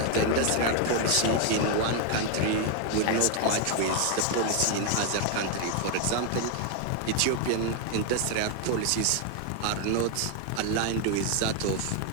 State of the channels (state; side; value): different; both; correlation 0.01